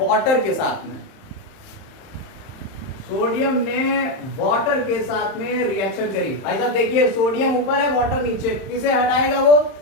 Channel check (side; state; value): right; late; 31 ms